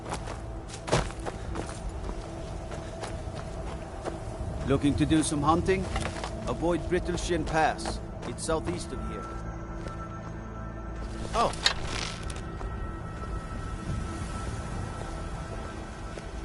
Looking to do some hunting? Avoid Brittleshin Pass. It's southeast of here. Oh.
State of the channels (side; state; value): both; identical; correlation 1.00